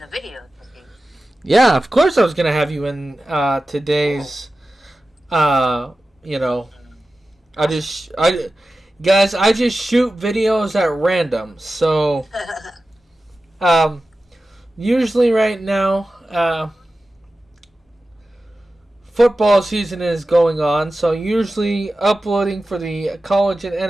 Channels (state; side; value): normal; both; correlation 0.94